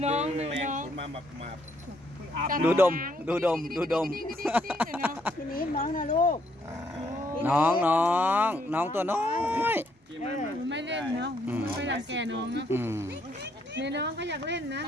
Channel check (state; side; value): normal; both; correlation 0.71